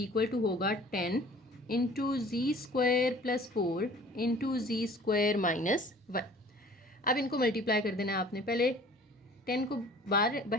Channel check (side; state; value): both; normal; correlation 0.49